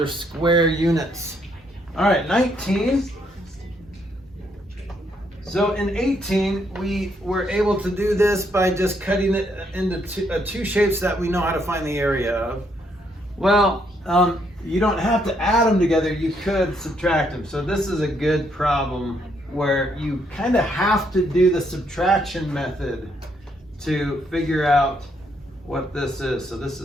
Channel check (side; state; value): both; normal; correlation 0.73